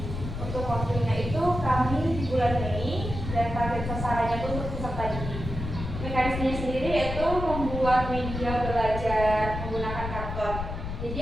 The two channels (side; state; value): left; noise; rumble, 6 dB below the sound